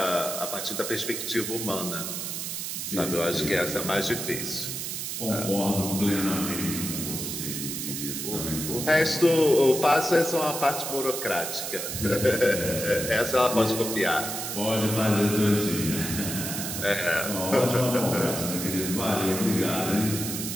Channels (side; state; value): right; noise; hiss, 4 dB below the sound